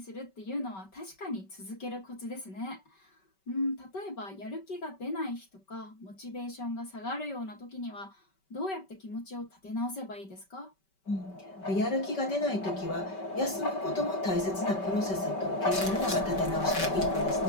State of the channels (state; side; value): late; right; 5.2 ms